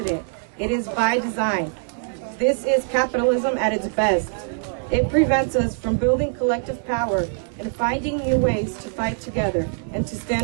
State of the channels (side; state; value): left; silent; digital silence